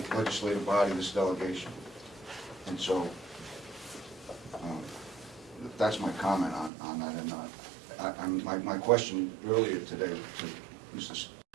legislative body, this delegation. And so that's my comment on that. And my question earlier today to Mr.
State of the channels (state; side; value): drops out; left; at 6.7 s